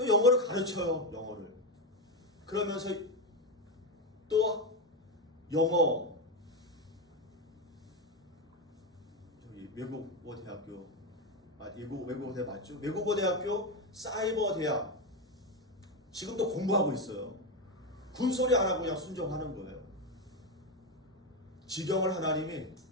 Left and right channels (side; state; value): both; normal; correlation 0.11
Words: 영어를 가르쳐요. 영어를. 그러면서 또 영어 저기 외국어 대학교 외국어 대학 맞죠? 외국어 대학교 사이버 대학 지금도 공부하고 있어요. 군소리 안 하고 그냥 순종하는 거예요. 지경을 하나님이